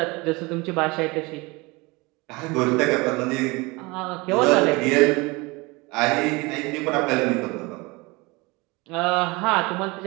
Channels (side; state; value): left; quieter; 24.9 dB